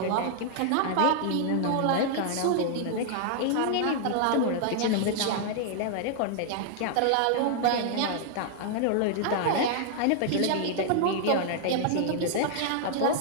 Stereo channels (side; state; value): both; different; correlation 0.00